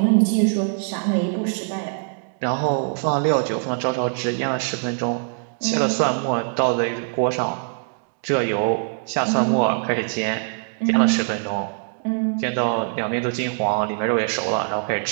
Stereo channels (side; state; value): left; silent; 64 dB below the other